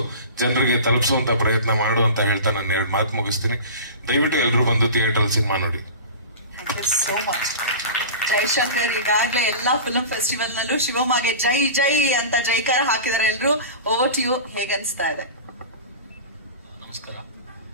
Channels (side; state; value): both; inverted; correlation -0.33